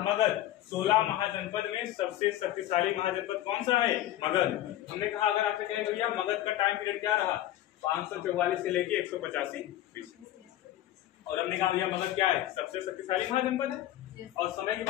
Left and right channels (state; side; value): quieter; right; 13.6 dB